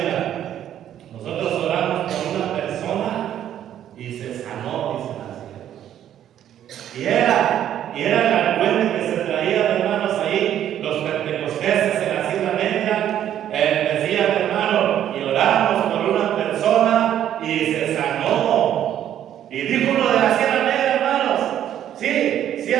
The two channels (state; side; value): quieter; left; 10.8 dB